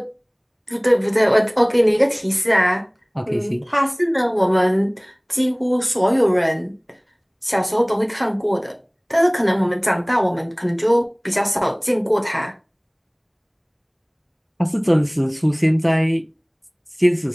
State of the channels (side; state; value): both; identical; correlation 1.00